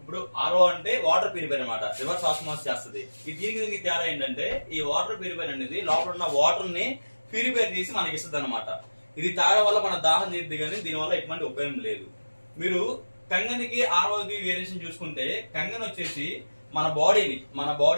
ఆర్ఓ అంటే వాటర్ ప్యూరిఫైర్ అనమాట, రివర్స్ ఆస్మాసిస్ చేస్తుంది. ఈ దీనికి తేడా ఏంటంటే, ఈ వాటర్ ప్యూరిఫైర్ అనేది లోపల ఉన్న వాటర్ ని ప్యూరిఫైర్ చేసి మనకి ఇస్తుంది అనమాట. ఇది తాగడం వల్ల మన దాహం తీరుద్ది, కానీ దీనివల్ల ఎటువంటి ఉపయోగం లేదు. మీరు కంగనికి ఆర్ఓకి వేరియేషన్ చూసుకుంటే, కంగన్ వచ్చేసి మన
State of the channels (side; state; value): both; inverted; correlation -1.00